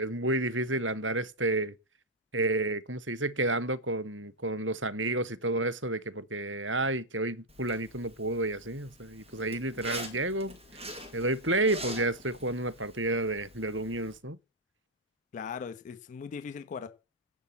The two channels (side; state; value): both; normal; correlation -0.03